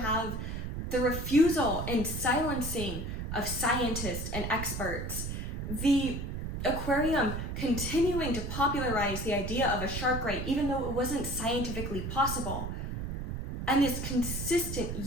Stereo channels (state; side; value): noise; right; rumble, 4 dB below the sound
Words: the refusal and silencing of scientists and experts, the aquarium continuing to popularize the idea of a shark ray even though it wasn't scientifically possible, and this consistent